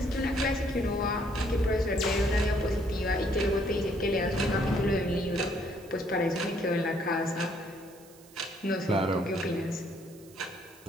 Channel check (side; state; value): right; noise; hiss, 24 dB below the sound